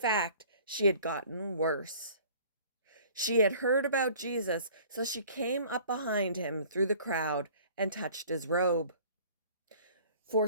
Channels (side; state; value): both; inverted; correlation -0.50